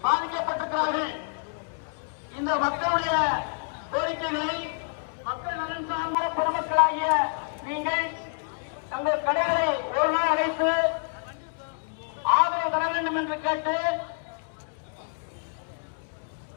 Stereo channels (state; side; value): silent; right; digital silence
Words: பாதிக்கப்பட்டிருக்கிறார்கள். இந்த மக்களுடைய கோரிக்கைகளை மக்கள் நலன் சார்ந்த பொதுமக்களாகிய நீங்கள் தங்கள் கடைகளை ஒரு நாள் அடைத்து ஆதரவு தர வேண்டும் என்று கேட்டு